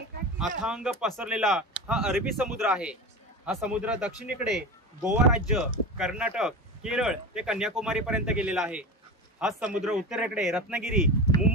अथांग पसरलेला हा अरबी समुद्र आहे. हा समुद्र दक्षिणेकडे गोवा राज्य, कर्नाटक, केरळ ते कन्याकुमारी पर्यंत गेलेला आहे. हा समुद्र उत्तरेकडे रत्नागिरी,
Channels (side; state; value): both; normal; correlation 0.27